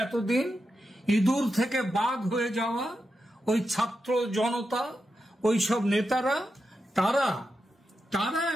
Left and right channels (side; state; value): both; normal; correlation 0.88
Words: এতদিন, ইঁদুর থেকে বাঘ হয়ে যাওয়া ওই ছাত্র জনতা, ওই সব নেতারা, তারা